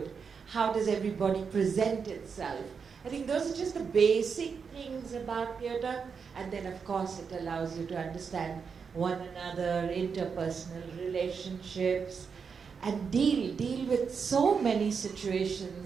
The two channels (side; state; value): left; quieter; 5.9 dB